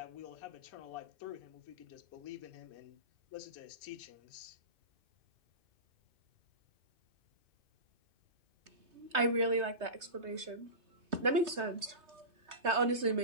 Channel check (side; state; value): left; late; 3.2 ms